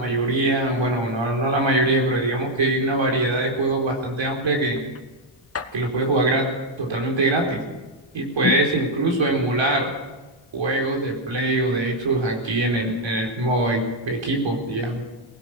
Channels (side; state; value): both; normal; correlation 0.01